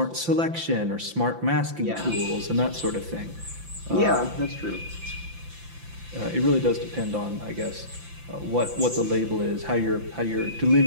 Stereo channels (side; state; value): left; late; 5.8 ms